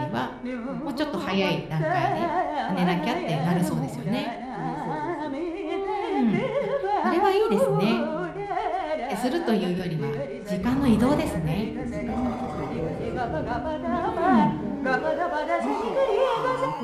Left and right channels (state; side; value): identical; both; correlation 1.00